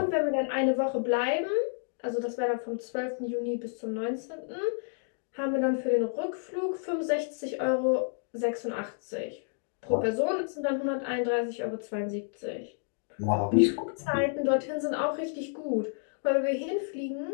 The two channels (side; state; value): right; silent; digital silence